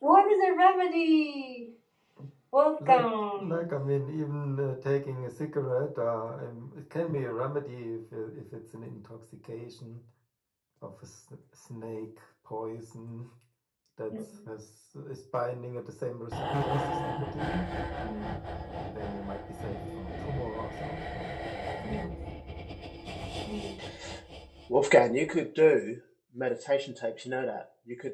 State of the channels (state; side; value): identical; both; correlation 1.00